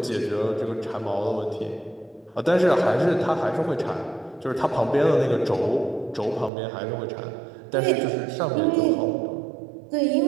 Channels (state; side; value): drops out; left; at 6.5 s